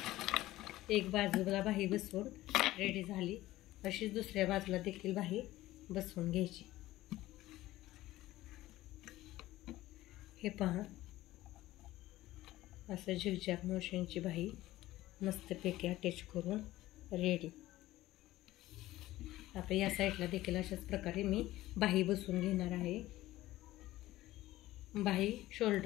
एक बाजूला बाही बसवून रेडी झाली, अशीच दुसऱ्या बाजूला देखील बाही बसवून घ्यायची। हे पहा, असं झिगझॅग मोशनची बाही मस्तपैकी अटॅच करून रेडी। आता या साईडला देखील अशाच प्रकारे मी बाही बसवून घेणार आहे। बाही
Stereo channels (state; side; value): quieter; right; 16.3 dB